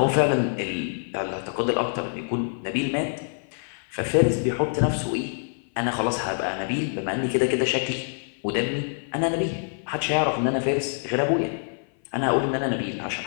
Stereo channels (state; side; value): silent; right; 57 dB below the other